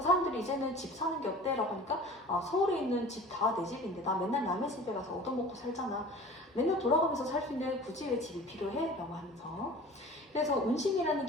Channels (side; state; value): both; normal; correlation 0.42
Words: 이제는 집 사는 게 어때? 라고 하니까 서울에 있는 집 다 내 집인데 나 맨날 남의 집에 가서 얻어먹고 살잖아. 맨날 돌아가면서 살 수 있는데 굳이 왜 집이 필요해? 라고 하면서. 그래서 운심이라는